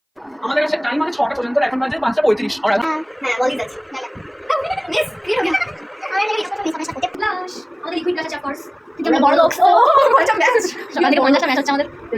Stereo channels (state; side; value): identical; both; correlation 1.00